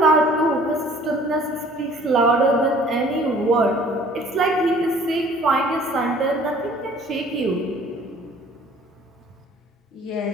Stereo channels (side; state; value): both; normal; correlation 0.53